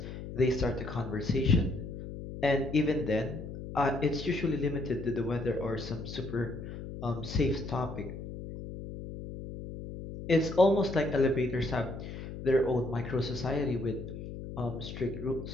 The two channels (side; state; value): left; noise; hum, 9 dB below the sound